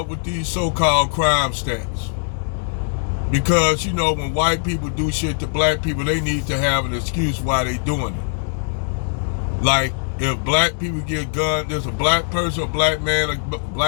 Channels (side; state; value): right; silent; digital silence